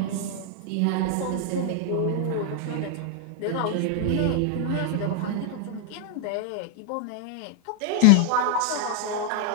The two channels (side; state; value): both; different; correlation 0.00